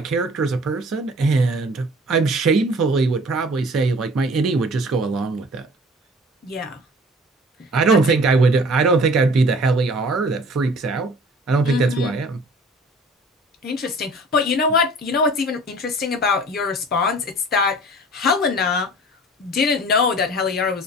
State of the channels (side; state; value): both; normal; correlation 0.47